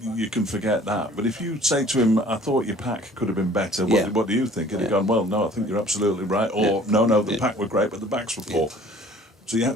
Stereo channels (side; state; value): both; normal; correlation 0.52